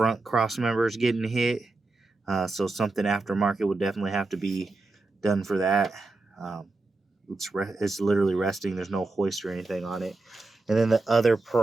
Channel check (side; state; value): left; quieter; 3.3 dB